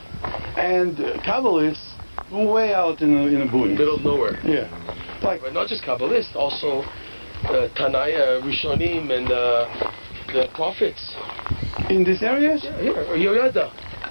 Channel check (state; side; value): inverted; both; correlation -1.00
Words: And Kabbalists, way out in the boonies. Middle of nowhere. Yeah. But not just Kabbalists, also Tanaya, Rishonim, and the prophets. In these areas? Yeah, here. Yoyada.